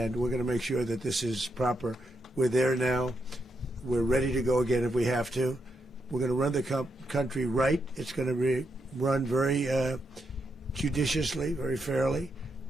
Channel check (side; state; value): both; normal; correlation 0.82